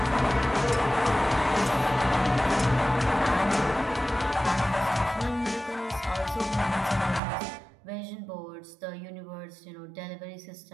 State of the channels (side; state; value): left; drops out; at 7.2 s